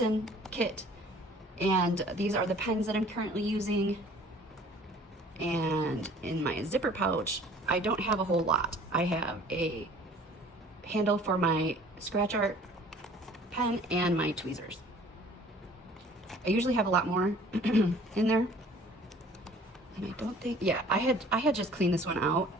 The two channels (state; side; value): normal; both; correlation 0.51